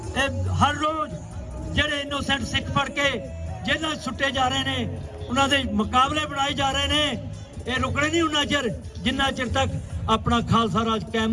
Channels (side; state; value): both; identical; correlation 1.00